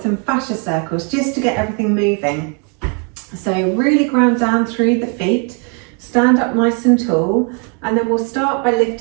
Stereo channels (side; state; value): left; quieter; 37.3 dB